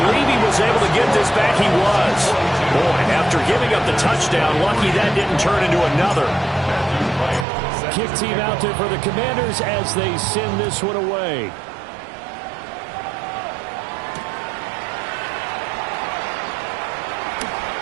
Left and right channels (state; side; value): drops out; left; at 7.5 s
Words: he was able to get this back. He was. Boy, after giving up the touchdown, lucky that didn't turn into another. Kick team out there for the Commanders as they send this one away.